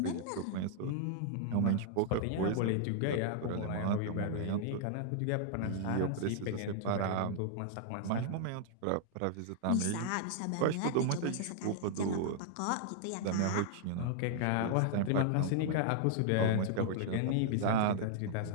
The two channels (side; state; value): both; different; correlation -0.01